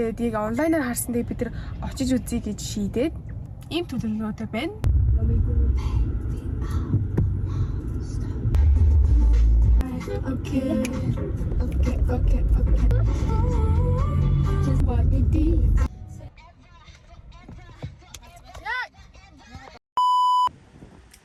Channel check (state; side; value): identical; both; correlation 1.00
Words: яг онлайнаар харсан дээр бид нар очиж үзье гэж шийдээд ийм төлөвлөгөөтэй байна. Okay. Just what we did.